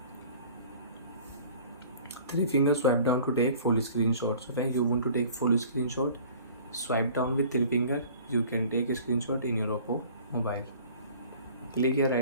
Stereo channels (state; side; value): inverted; both; correlation -0.48